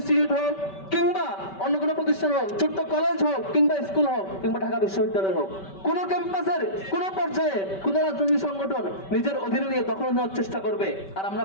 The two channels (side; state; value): right; late; 5.2 ms